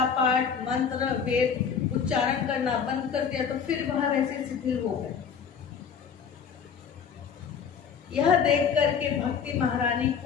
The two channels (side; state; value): right; quieter; 6.7 dB